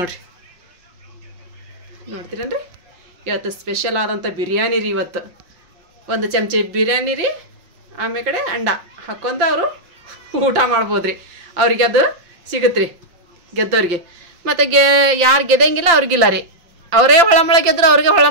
ನೋಡ್ತೀರೇನ್ರಿ? ಇವತ್ತು ಸ್ಪೆಷಲ್ ಆದಂಥ ಬಿರಿಯಾನಿ ರೀ. ಇವತ್ತು 1 ಚಮಚ ಬಿರಿಯಾನಿ ರೀ, ಆಮೇಲೆ ಕಡೆ ಅಂಡ ಹಾಕ್ಕೊಂತ ಅವರು ಊಟ ಮಾಡ್ಬೋದು ರೀ. ಅವ್ರಿಗೆ ಅದು ಸಿಗುತ್ತೆ ರೀ ಗೆದ್ದವ್ರಿಗೆ. ಮತ್ತು ಯಾರು ಗೆದ್ದಂಗಿಲ್ಲ ಅವ್ರಿಗಿಲ್ಲ ರೀ. ಅವರೇ ಹೊಳಮಳ ಗೆದ್ರು ಅವ್ರಿಗೆ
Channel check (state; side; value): late; left; 5.8 ms